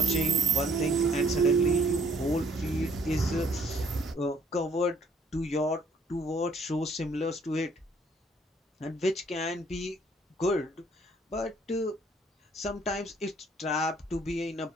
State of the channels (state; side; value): normal; both; correlation 0.63